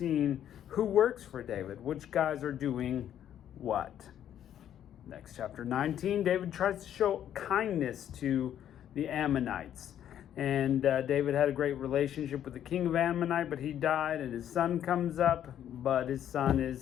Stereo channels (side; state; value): right; quieter; 10.4 dB